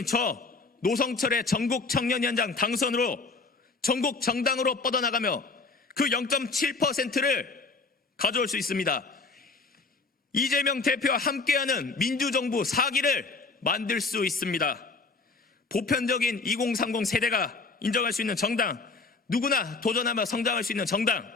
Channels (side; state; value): right; quieter; 4.0 dB